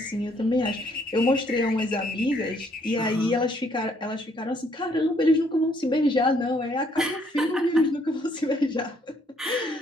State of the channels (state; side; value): normal; both; correlation 0.67